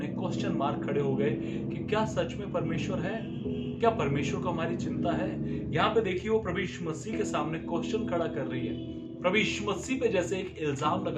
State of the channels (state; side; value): identical; both; correlation 1.00